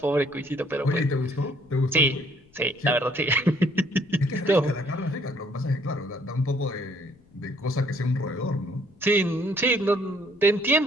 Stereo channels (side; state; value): left; noise; rumble, 29 dB below the sound